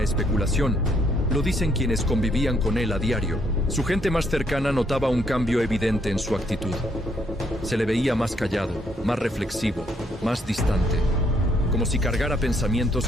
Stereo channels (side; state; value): both; normal; correlation 0.71